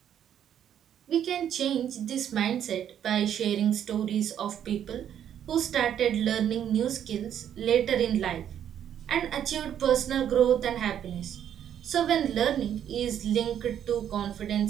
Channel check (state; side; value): quieter; left; 9.7 dB